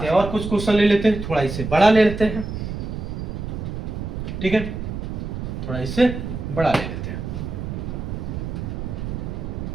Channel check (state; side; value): noise; right; rumble, 5 dB below the sound